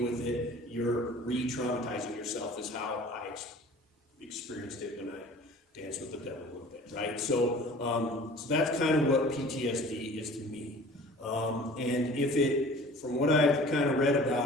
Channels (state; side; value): normal; both; correlation 0.45